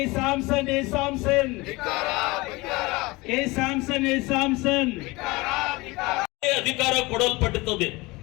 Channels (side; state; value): right; quieter; 23.0 dB